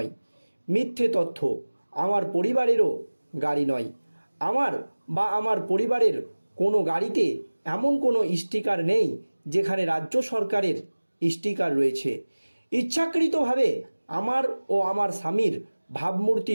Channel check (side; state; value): both; inverted; correlation -1.00